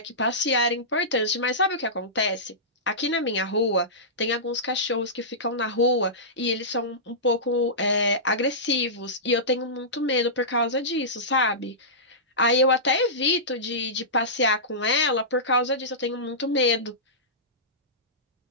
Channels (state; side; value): normal; both; correlation -0.17